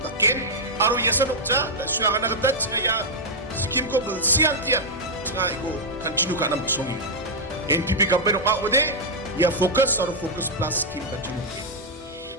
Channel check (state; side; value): normal; both; correlation -0.04